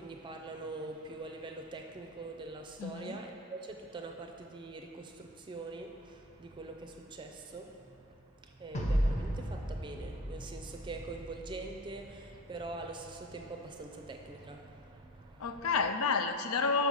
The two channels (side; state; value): both; normal; correlation 0.26